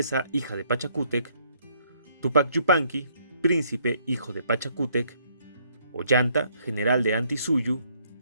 hija de Pachacútec; Tupac Yupanqui, príncipe, hijo de Pachacútec; Ollanta, general de Antisuyu;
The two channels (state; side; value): inverted; both; correlation -0.67